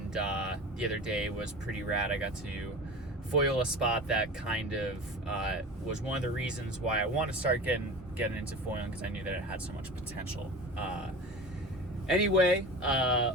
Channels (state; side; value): normal; both; correlation 0.34